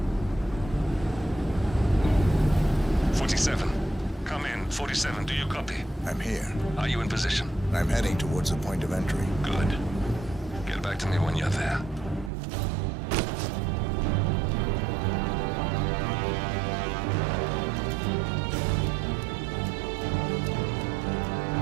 Come in. 47, do you copy? I'm here. Are you in position? I'm heading towards the point of entry. Good. Get back to me when you're there.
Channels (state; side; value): drops out; left; at 12.3 s